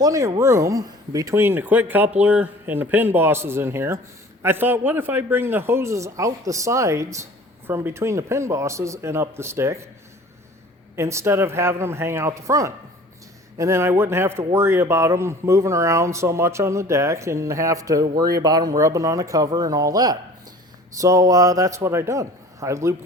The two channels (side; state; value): both; normal; correlation 0.46